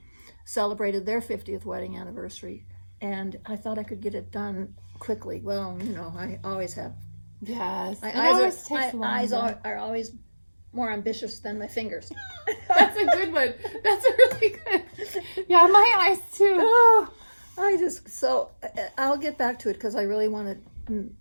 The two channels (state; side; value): inverted; both; correlation -1.00